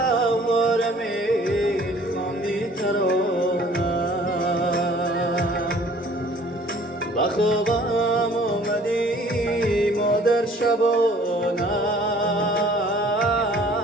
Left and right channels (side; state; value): both; normal; correlation 0.53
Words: میخواندی ترانه. با خوابم آمدی مادر شبانه،